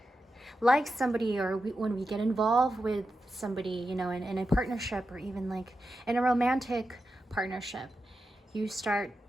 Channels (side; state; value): both; normal; correlation 0.89